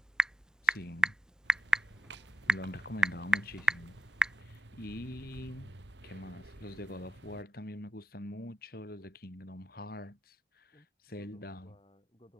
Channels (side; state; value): both; normal; correlation 0.86